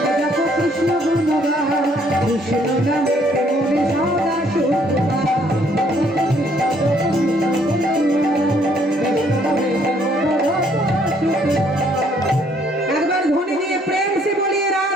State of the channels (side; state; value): both; normal; correlation 0.65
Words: কৃষ্ণ নামে মোহন সদা সুখ পাও। একবার ধ্বনি দিয়ে প্রেম সে বলিয়ে